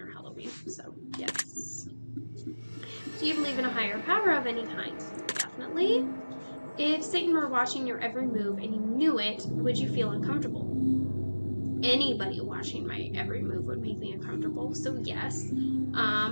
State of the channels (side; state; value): both; inverted; correlation -1.00